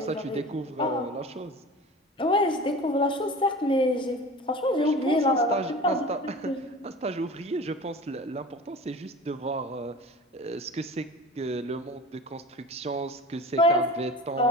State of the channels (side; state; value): both; normal; correlation 0.37